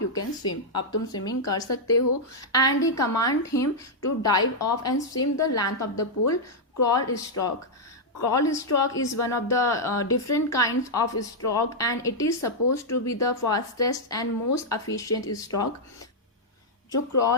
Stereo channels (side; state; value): both; normal; correlation -0.04